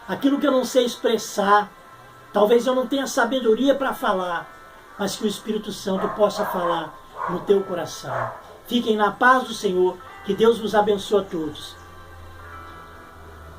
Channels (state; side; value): identical; both; correlation 1.00